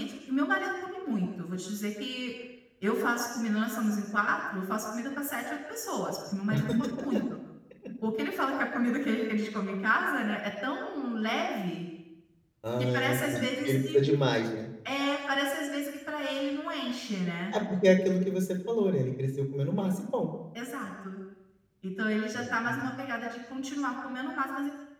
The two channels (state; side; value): identical; both; correlation 1.00